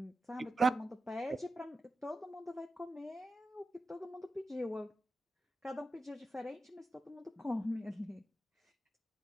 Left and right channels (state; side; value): normal; both; correlation 0.91